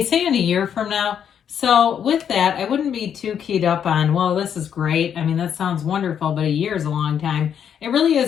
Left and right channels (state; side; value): quieter; right; 8.5 dB